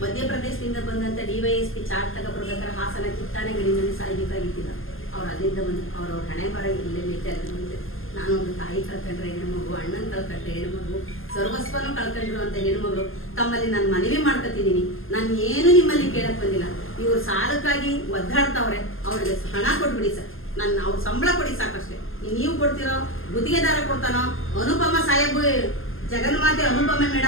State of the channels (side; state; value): right; late; 0.59 ms